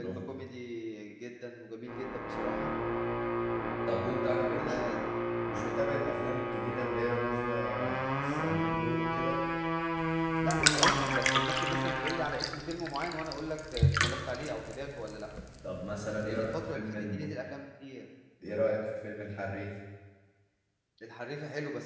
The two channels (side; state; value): both; identical; correlation 1.00